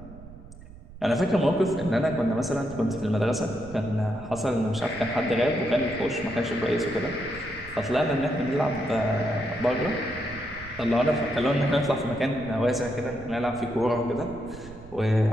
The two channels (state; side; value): noise; right; rumble, 17 dB below the sound